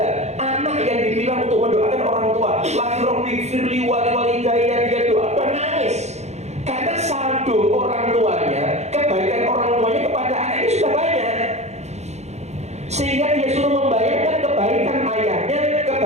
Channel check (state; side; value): late; left; 0.32 ms